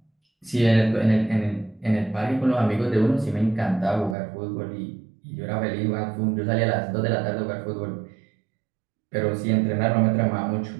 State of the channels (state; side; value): drops out; left; at 4.2 s